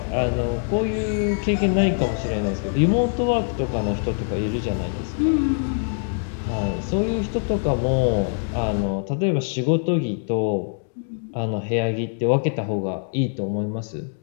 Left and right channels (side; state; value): right; silent; 63 dB below the other